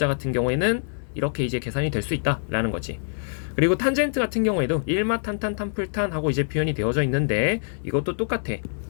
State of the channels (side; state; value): right; silent; 62 dB below the other